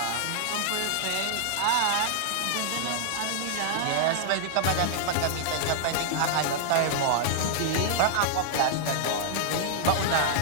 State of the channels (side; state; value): both; different; correlation -0.01